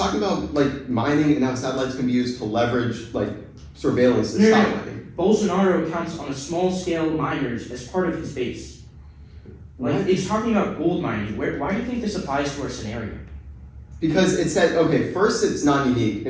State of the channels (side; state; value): both; identical; correlation 1.00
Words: about like mining and how satellites can be used to leverage like surveillance to stop mining. Bolsonaro counts on a small scale miners as part of his base. Like What? it's talking about gold mining. Why do you think this applies to our scenario? Because it said, okay, first it's non-unique. It